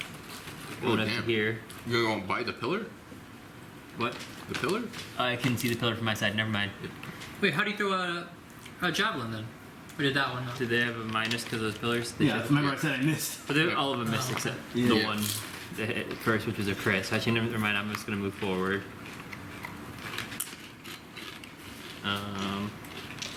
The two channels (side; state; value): both; identical; correlation 1.00